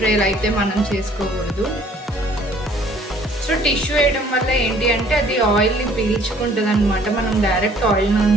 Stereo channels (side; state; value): both; normal; correlation 0.57